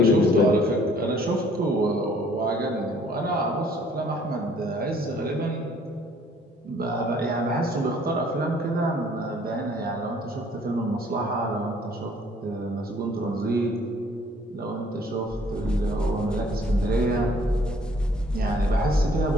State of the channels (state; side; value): normal; both; correlation 0.59